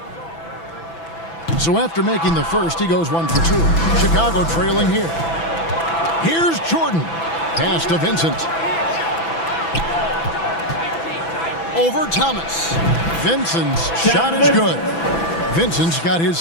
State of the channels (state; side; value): late; right; 6.0 ms